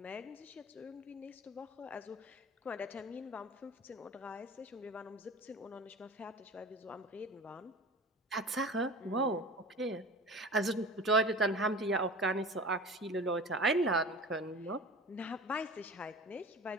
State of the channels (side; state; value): both; normal; correlation 0.37